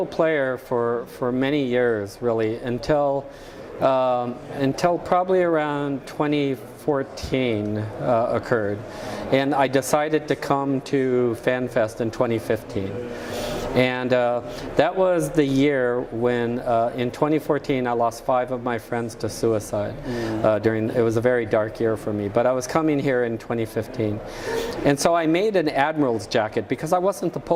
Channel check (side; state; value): both; identical; correlation 1.00